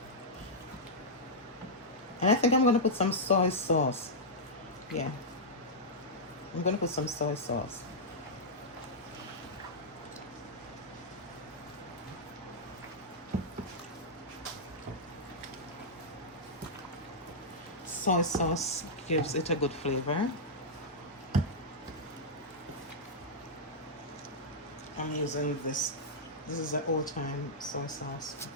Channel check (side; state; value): both; normal; correlation -0.07